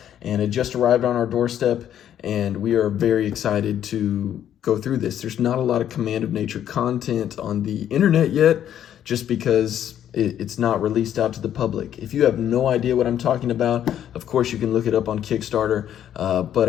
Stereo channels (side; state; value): right; quieter; 10.4 dB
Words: and it just arrived on our doorstep. And we are very excited to go through this. There's not a lot of Command of Nature content on the internet yet, just because it's not released out to the public. If you have no idea what I'm talking about, of course you can look it up on Kickstarter, but